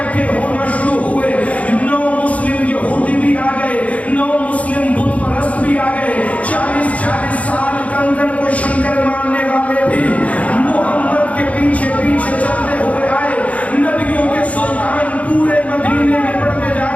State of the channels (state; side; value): late; right; 0.067 ms